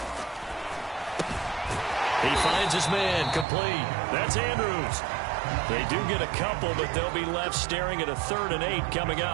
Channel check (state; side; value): drops out; left; at 3.5 s